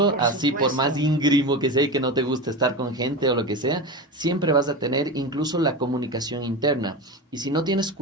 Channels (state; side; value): normal; both; correlation 0.24